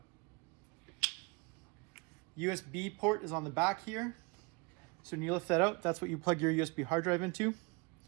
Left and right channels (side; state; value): left; quieter; 28.8 dB